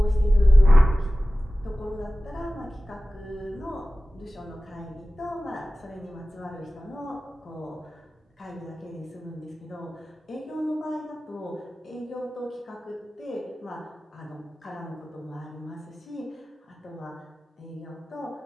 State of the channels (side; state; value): both; normal; correlation 0.96